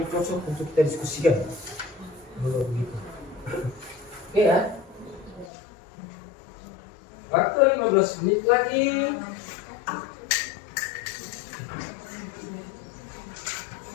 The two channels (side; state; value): right; drops out; at 5.5 s